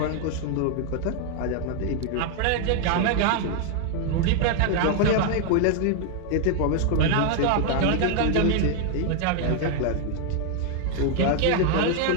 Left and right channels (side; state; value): both; different; correlation 0.00